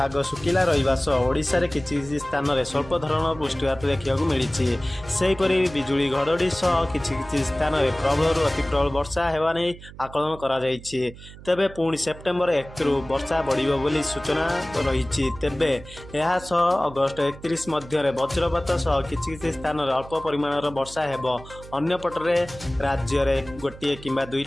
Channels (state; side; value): noise; right; hum, 17 dB below the sound